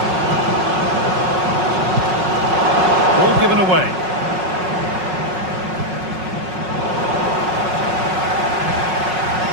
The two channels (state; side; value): late; left; 5.5 ms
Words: Ball given away.